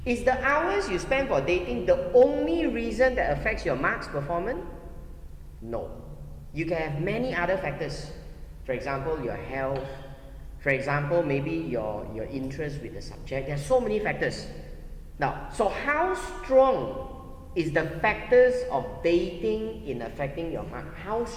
is the hours you spend for dating the only reason that affects your marks performance? No. You can have many other factors. For example, your health. For example, maybe your interest with the subject. There are so many factors. Now, so how strong is the factors of dating in affecting your mark? How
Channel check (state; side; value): identical; both; correlation 1.00